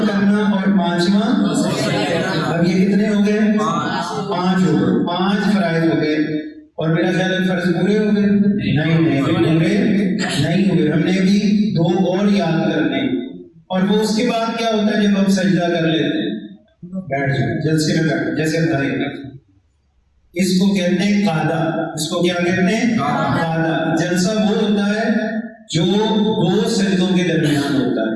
کرنا، اور 5واں۔ اب یہ کتنے ہو گئے؟ 5 ہو گئے، 5 فرائض ہو گئے، اور میرا خیال ہے فرض پورے ہو گئے؟ نہیں، پورے نہیں ہوئے۔ ہم نے بھی 2 اور یاد کرنے، اور وہ اس کے بعد کیا ہوتا ہے جب ہم سجدہ کر لیتے ہیں؟ بیٹھ جائیں، جلسے میں بیٹھ، جیسے اس کو کہتے ہیں قعدہ۔ اس کو کیا کہتے ہیں؟ قعدہ۔ جلسہ وہ ہوتا ہے جو 2 سجدوں کے درمیان ہوتا ہے۔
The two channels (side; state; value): both; identical; correlation 1.00